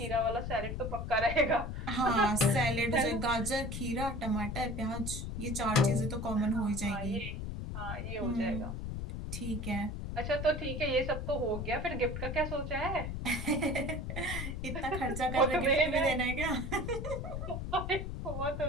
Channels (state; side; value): noise; left; rumble, 5 dB below the sound